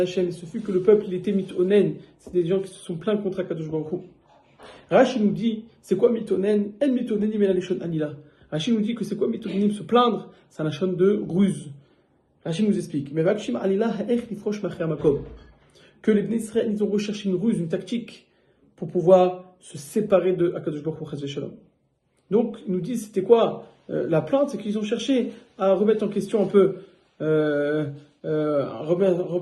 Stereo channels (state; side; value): identical; both; correlation 1.00